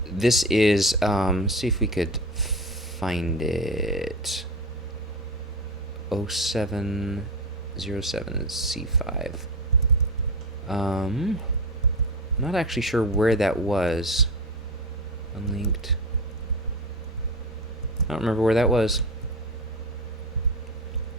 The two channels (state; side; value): normal; both; correlation 0.23